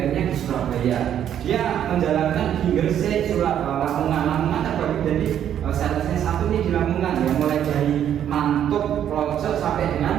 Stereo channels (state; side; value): quieter; left; 10.0 dB